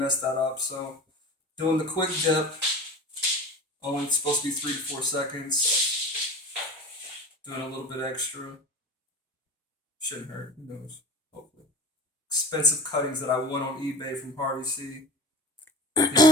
that up. So doing the quick dip, only supposed to be 3 to 4 seconds. Doing a little bit extra. Shouldn't hurt, who knows, hopefully. Expensive cuttings that I won on eBay from Harvey C.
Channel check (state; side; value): normal; both; correlation 0.35